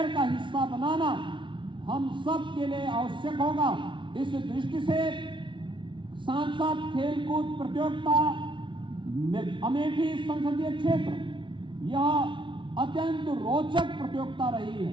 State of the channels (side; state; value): left; late; 0.24 ms